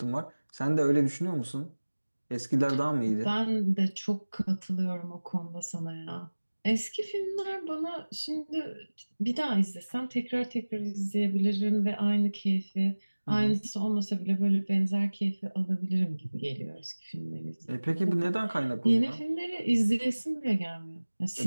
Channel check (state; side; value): inverted; both; correlation -1.00